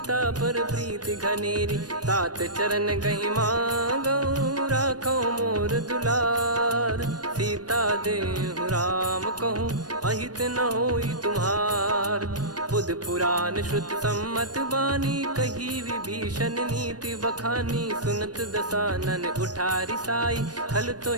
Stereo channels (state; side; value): late; left; 0.69 ms